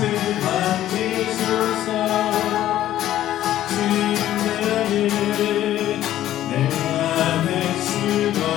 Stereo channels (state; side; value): quieter; right; 12.8 dB